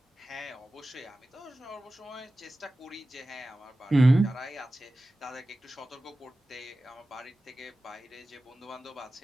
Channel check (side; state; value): both; normal; correlation 0.96